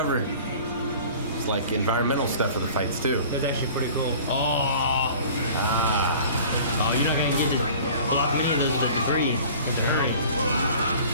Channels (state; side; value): inverted; both; correlation -0.45